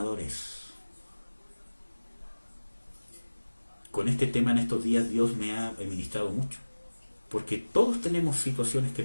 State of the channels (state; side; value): inverted; both; correlation -1.00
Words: Con este tema en estos días Dios me ha ministrado mucho, porque todos tenemos situaciones que